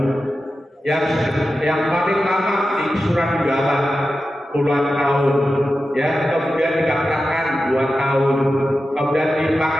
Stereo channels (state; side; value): normal; both; correlation 0.92